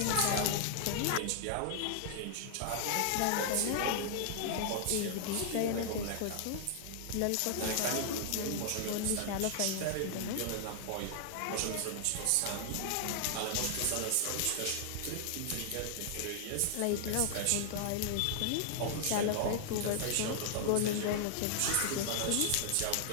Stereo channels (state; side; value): different; both; correlation -0.01